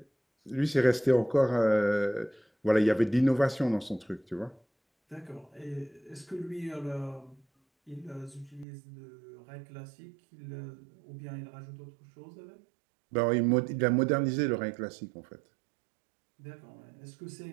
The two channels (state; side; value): drops out; left; at 8.7 s